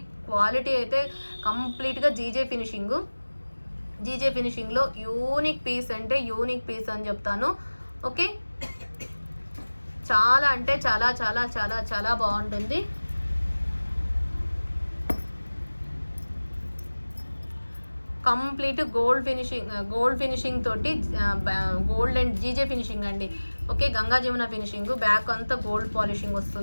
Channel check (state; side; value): inverted; both; correlation -1.00